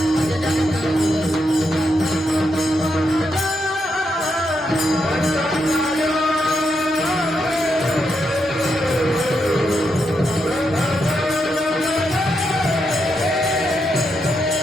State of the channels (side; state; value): both; normal; correlation 0.82